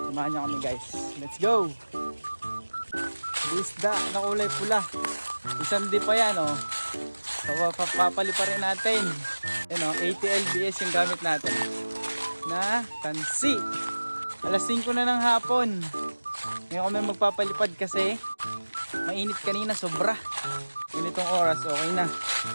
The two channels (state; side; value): inverted; both; correlation -1.00